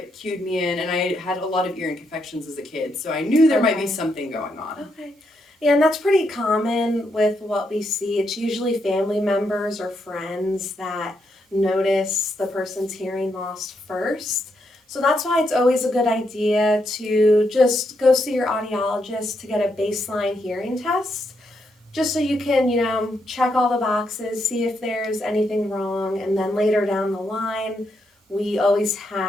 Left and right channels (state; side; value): normal; both; correlation 0.80